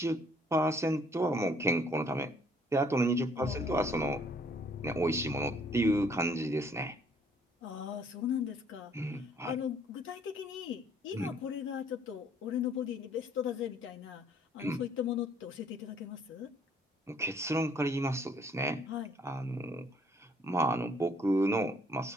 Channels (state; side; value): normal; both; correlation 0.63